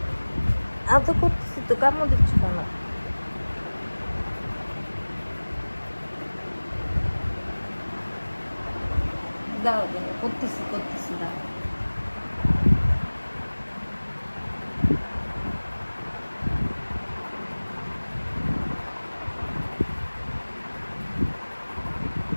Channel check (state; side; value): inverted; both; correlation -1.00